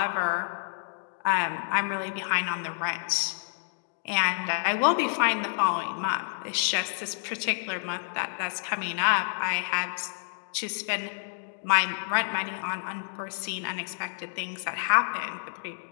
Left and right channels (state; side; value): silent; right; digital silence